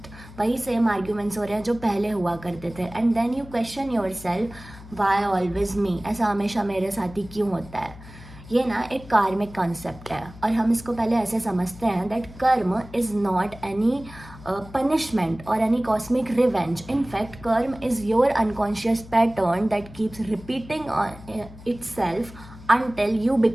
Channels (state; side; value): noise; left; hum, 18 dB below the sound